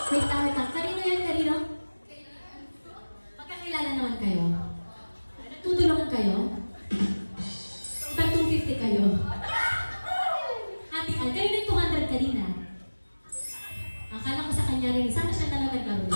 Wait lang. Kanino? Magkakilala naman kayo. Tutulungan kayo? Iba 250 kayo. Hatian. Kayo yung 200 kanina. Akala ko sa kanya rin. Sana siya na lang naglaro.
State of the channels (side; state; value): both; inverted; correlation -1.00